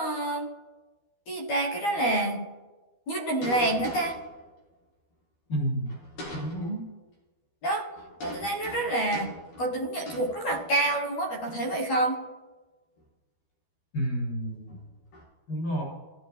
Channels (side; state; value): right; late; 12 ms